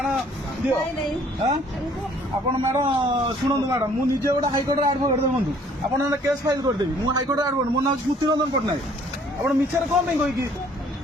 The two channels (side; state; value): both; normal; correlation 0.59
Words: ଦିଅ ଆପଣ ମ୍ୟାଡାମ ଶୁଣନ୍ତୁ ମ୍ୟାଡାମ ମୁଁ ନିଜେ ଗୋଟେ ହାଇକୋର୍ଟରେ ଆଡଭୋକେଟ ଦେଖନ୍ତୁ ଆପଣ ଗୋଟେ କେସ୍ ଫାଇଲ କରିଦେବି ମୁଁ ହାଇକୋର୍ଟରେ ଆଡଭୋକେଟ ମୋ ନାଁ ସ୍ମୃତିରଞ୍ଜନ ପଟ୍ଟନାୟକ ଆପଣ ମିଛରେ କଣ ପାଇଁ କହିକି